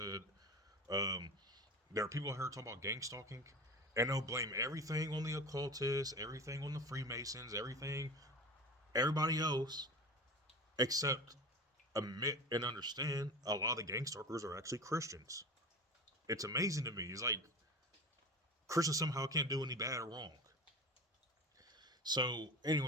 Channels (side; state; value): both; normal; correlation 0.32